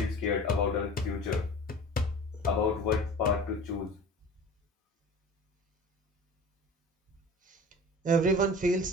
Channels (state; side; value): normal; both; correlation 0.39